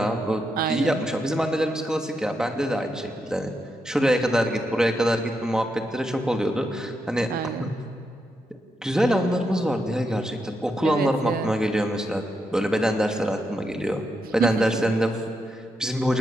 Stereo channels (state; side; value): normal; both; correlation 0.83